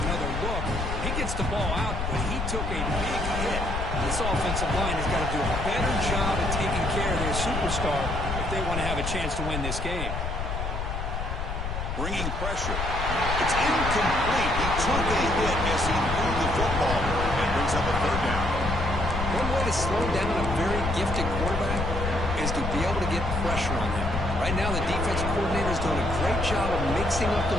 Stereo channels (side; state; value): left; noise; rumble, 3 dB below the sound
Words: look. He gets the ball out, but he took a big hit. This offensive line has got to do a better job of taking care of their superstar if they want to have a chance to win this game. Bringing pressure. It's incomplete. He took a hit as he threw the football and brings up a 3rd down. One way to slow down a very gifted quarterback is to be able to get pressure on him. Right now, the defensive coordinator is doing a great job of mixing up the